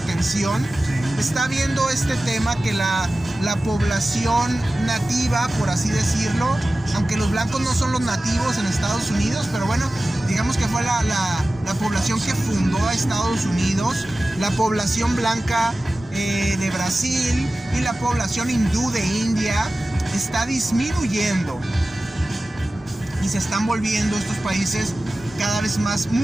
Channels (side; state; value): both; normal; correlation 0.96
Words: está viendo este tema que la población nativa, por así decirlo, aunque los blancos no son los nativos en Estados Unidos, pero bueno, digamos que fue la población que fundó a Estados Unidos, la población blanca de Brasil y la población hindú de India está disminuyendo, y se están volviendo estos países cada vez más